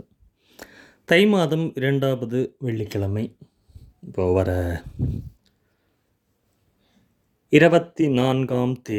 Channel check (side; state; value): both; identical; correlation 1.00